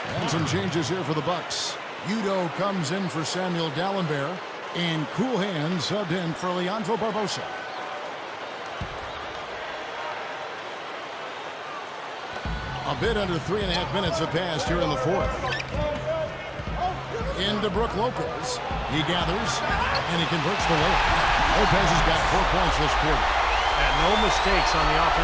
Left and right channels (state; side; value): identical; both; correlation 1.00